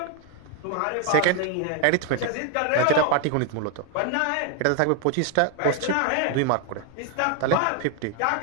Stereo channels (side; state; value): both; different; correlation 0.01